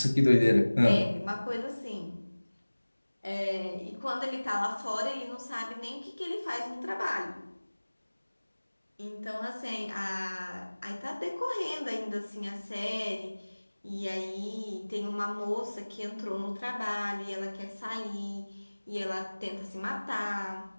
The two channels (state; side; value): inverted; both; correlation -1.00